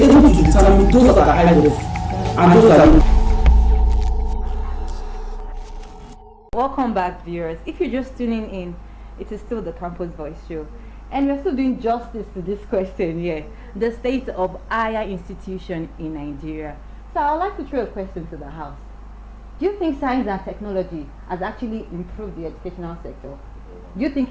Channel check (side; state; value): both; identical; correlation 1.00